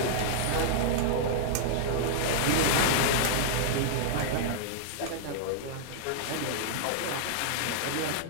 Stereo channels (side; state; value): both; different; correlation -0.01